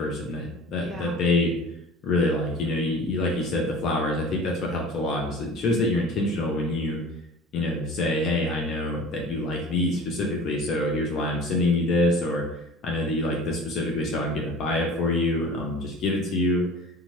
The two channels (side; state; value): both; normal; correlation 0.41